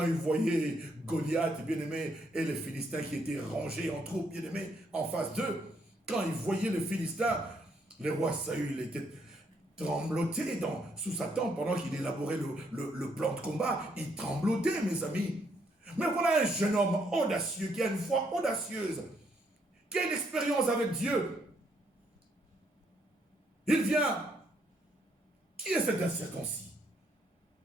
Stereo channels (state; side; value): normal; both; correlation 0.72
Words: il voyait Goliath, bien-aimé, et les Philistins qui étaient rangés en troupes, bien-aimé, en face d'eux, quand il voyait les Philistins, le roi Saül était trembloté sous sa tente pendant qu'il élaborait le plan de combat. Il tremblotait, mes amis. Mais voilà un jeune homme audacieux, qui a une foi audacieuse, qui a une expérience avec Dieu. Il vient. Qui est cet incirconcis